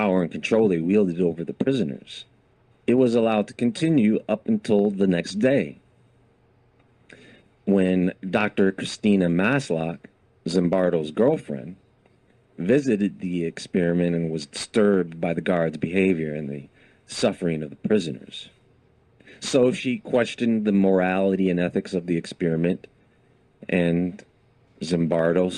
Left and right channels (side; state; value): both; identical; correlation 1.00